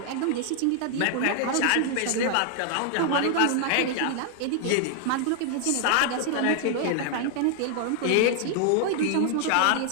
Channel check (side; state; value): both; different; correlation 0.00